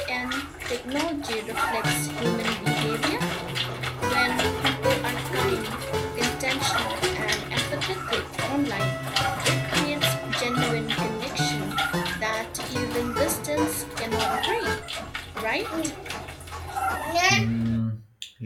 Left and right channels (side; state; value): both; identical; correlation 1.00